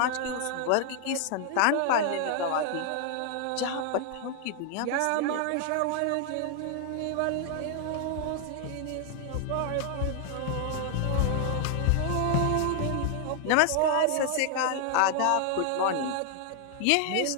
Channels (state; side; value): different; both; correlation 0.00